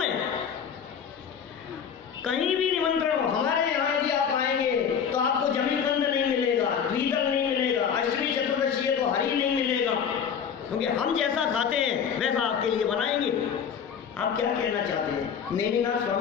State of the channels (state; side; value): quieter; right; 7.5 dB